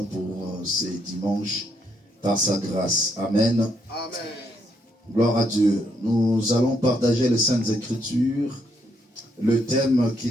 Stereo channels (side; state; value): both; normal; correlation 0.75